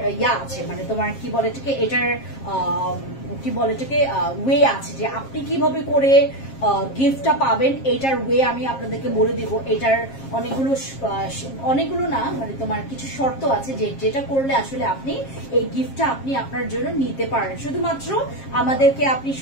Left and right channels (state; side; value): late; right; 7.4 ms